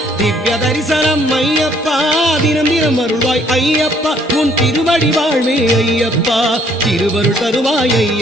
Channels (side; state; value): both; normal; correlation 0.63